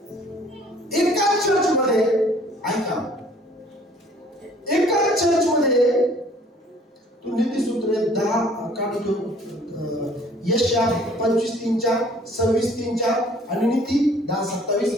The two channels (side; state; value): both; normal; correlation 0.55